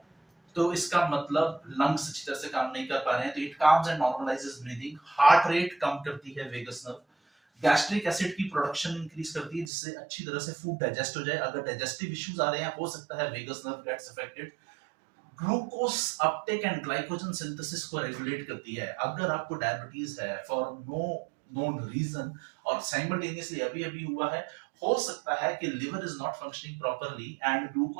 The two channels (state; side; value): drops out; left; at 9.7 s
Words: तो इसका मतलब लंग्स अच्छी तरह से काम नहीं कर पा रहे हैं, तो it calms and normalises breathing. Heart rate कम करती है वेगस नर्व. गैस्ट्रिक एसिड की प्रोडक्शन इंक्रीज करती है जिससे अच्छी तरह से फूड डाइजेस्ट हो जाए. अगर डाइजेस्टिव इश्यूज आ रहे हैं हो सकता है vagus nerve gets affected. Glucose uptake and glycogen synthesis को रेगुलेट करती है. अगर आपको डायबिटीज है फॉर नो नोन रीजन और साइमल्टेनियसली अभी अभी हुआ है, हो सकता है कि liver is not functioning properly and